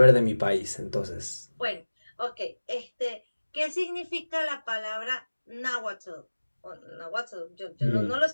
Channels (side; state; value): both; inverted; correlation -1.00